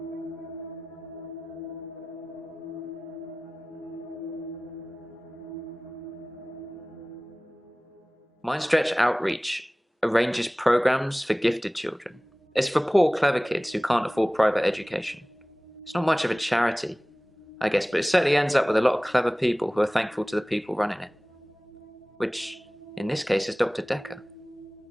Mind Stretch Outreach arranges programs for gifted children. It's for poor, clever kids who can't afford private education. It's not much of a charity, I guess, but it certainly ends up with a lot of clever people who are thankful to the people running it. Which, in this case, is Dr. Dekker.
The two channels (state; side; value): normal; both; correlation 0.98